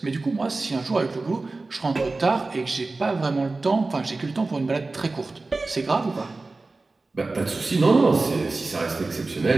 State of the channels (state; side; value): quieter; left; 3.5 dB